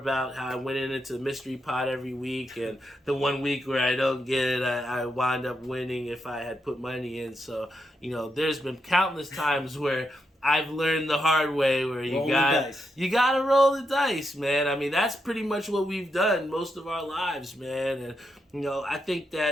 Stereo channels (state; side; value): normal; both; correlation 0.83